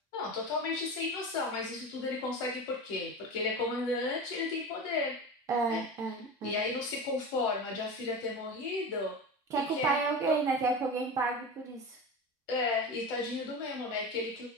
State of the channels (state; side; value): normal; both; correlation 0.27